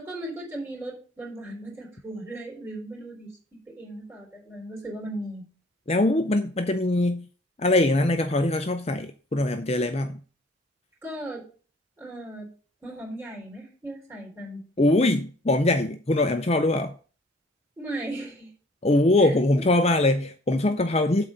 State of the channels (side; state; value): both; normal; correlation 0.55